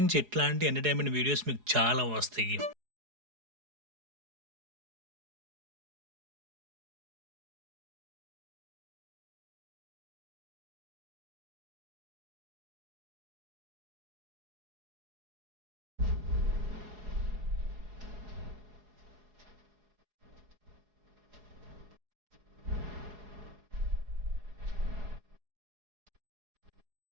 ఇట్లాంటి ఎంటర్టైన్మెంట్ వీడియోస్ మీకు చాలా వస్తాయి.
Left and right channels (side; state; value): left; late; 4.8 ms